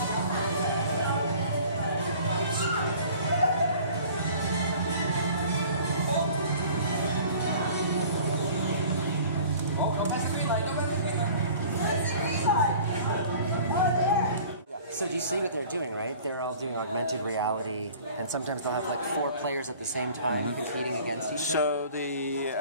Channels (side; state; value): both; inverted; correlation -0.47